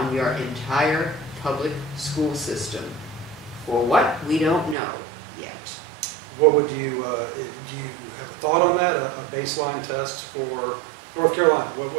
your entire public school system. For what? We don't know yet. What would you, do you have a thought on that, a baseline test for North Carolina? What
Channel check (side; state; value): left; drops out; at 4.8 s